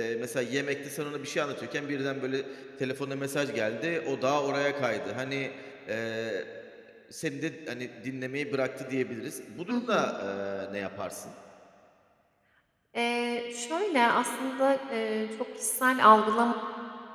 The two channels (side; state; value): both; identical; correlation 1.00